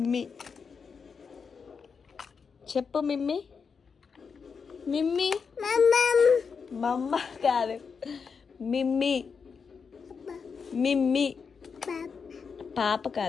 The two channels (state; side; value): quieter; right; 5.7 dB